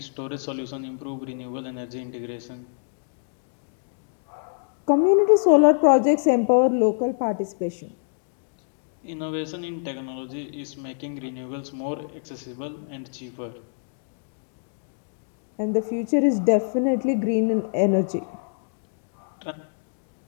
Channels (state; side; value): silent; right; digital silence